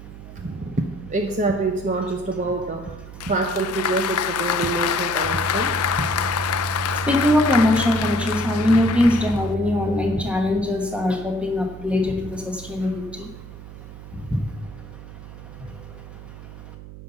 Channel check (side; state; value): right; noise; hum, 15 dB below the sound